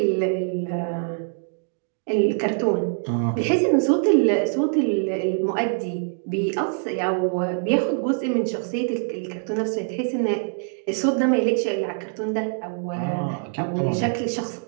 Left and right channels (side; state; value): left; silent; digital silence